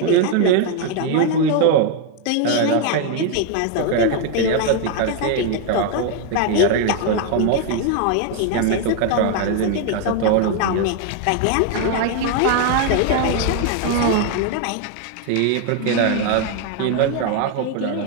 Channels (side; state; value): both; different; correlation 0.01